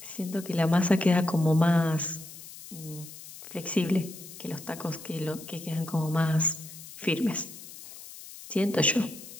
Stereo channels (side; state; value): left; noise; hiss, 15 dB below the sound